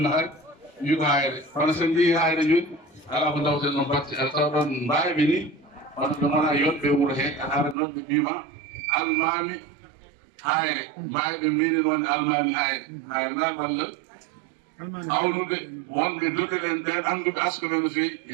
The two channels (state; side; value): drops out; left; at 7.8 s